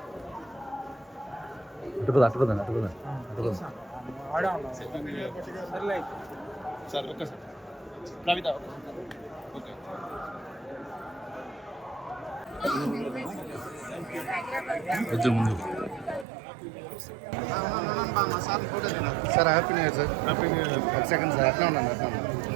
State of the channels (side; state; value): left; drops out; at 16.2 s